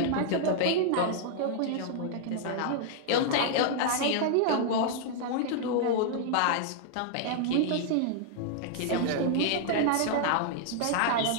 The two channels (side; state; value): both; different; correlation -0.01